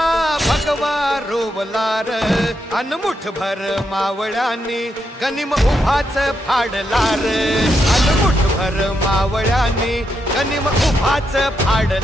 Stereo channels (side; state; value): both; normal; correlation 0.82